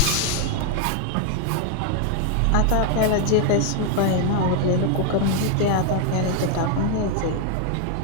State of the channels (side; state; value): both; different; correlation 0.01